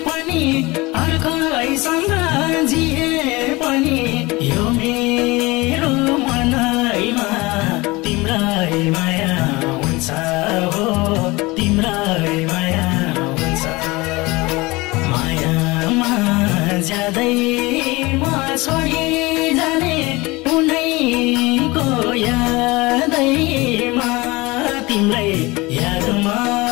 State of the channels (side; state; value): right; quieter; 22.8 dB